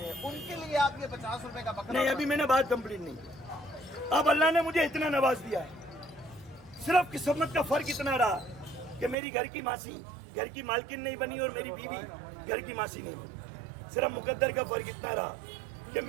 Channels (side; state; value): left; drops out; at 9.2 s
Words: उनके लिए आप ये 50 रुपए का बकरा नहीं, अभी मैंने बात कंप्लीट नहीं की। अब अल्लाह ने मुझे इतना नवाज दिया है, सिर्फ किस्मत का फर्क इतना रहा कि मेरी घर की मासी घर की मालकिन नहीं बनी और मेरी बीवी घर की मासी नहीं बनी। सिर्फ मुकद्दर का फर्क इतना रहा कि